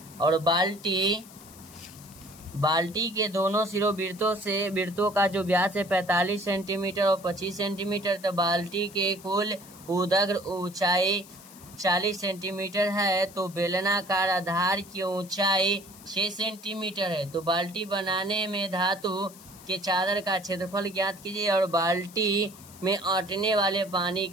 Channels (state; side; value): noise; left; hiss, 20 dB below the sound